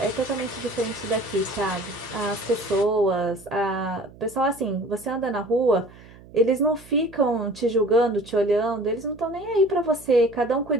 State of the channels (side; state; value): right; noise; hum, 21 dB below the sound